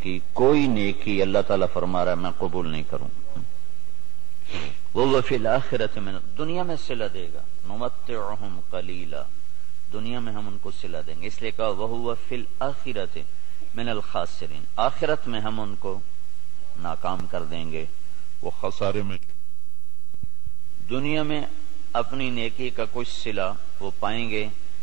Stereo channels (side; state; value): left; quieter; 20.4 dB